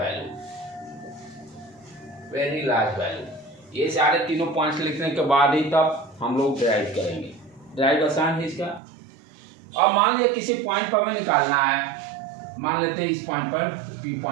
वैल्यू। ये सारे तीनों पॉइंट्स लिखने के बाद ही तब हम लोग ड्राइव करेंगे। ड्राइव आसान है इसका। अब मान लिया किसी पॉइंट पर हमें निकालना है, मान लेते हैं इस पॉइंट पर, P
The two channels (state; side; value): drops out; left; at 8.8 s